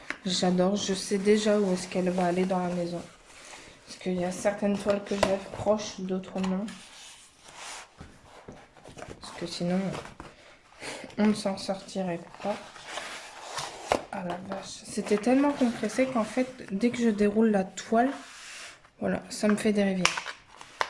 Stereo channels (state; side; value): identical; both; correlation 1.00